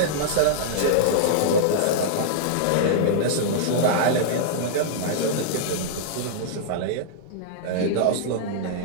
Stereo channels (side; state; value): both; different; correlation -0.02